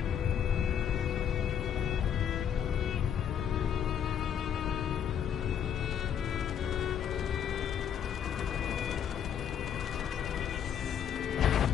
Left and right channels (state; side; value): quieter; right; 8.7 dB